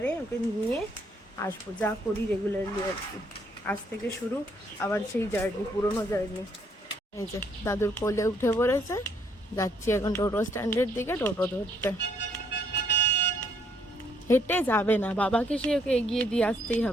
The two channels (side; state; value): both; normal; correlation 0.69